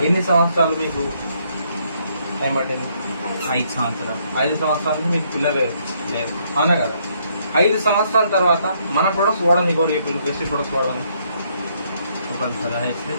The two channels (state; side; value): inverted; both; correlation -0.70